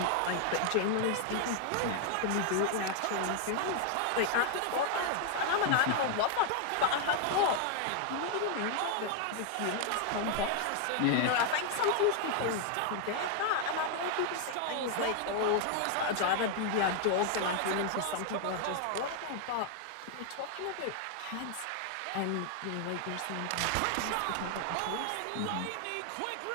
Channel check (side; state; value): both; different; correlation 0.00